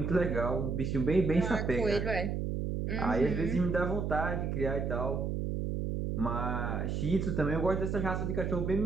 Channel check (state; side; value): noise; right; hum, 1 dB below the sound